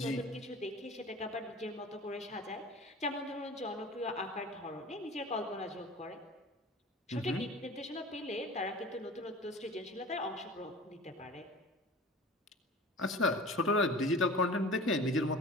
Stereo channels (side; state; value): both; normal; correlation 0.40